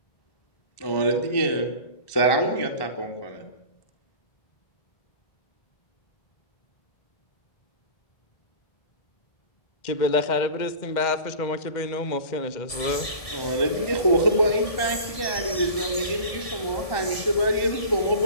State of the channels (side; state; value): right; late; 1.7 ms